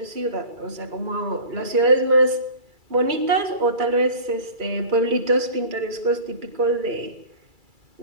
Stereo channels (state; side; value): late; left; 2.3 ms